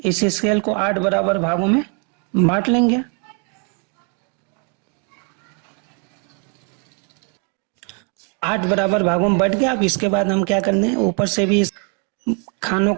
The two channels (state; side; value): quieter; left; 39.0 dB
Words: स्केल को 8 बराबर भागों में बांट लेंगे। आठ बराबर भागों में बट गया। अब इसके बाद हम क्या करने हैं, ऊपर से भी इस खानों